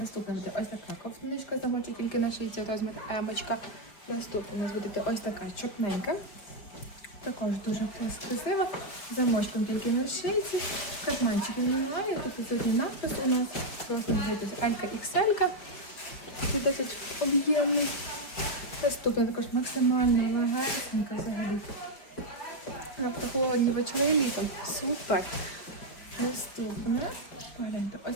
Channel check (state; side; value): late; right; 5.1 ms